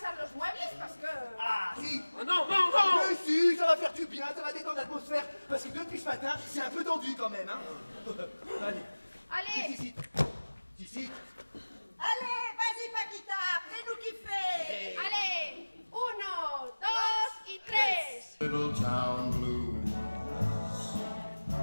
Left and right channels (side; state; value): both; inverted; correlation -1.00